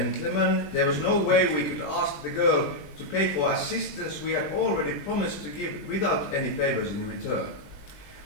there was no way we could ask the girl to pay for assistance we had already promised to give without any favors in return.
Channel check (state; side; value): late; right; 20 ms